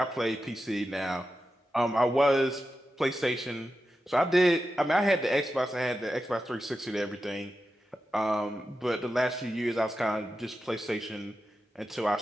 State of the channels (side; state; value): both; normal; correlation 0.91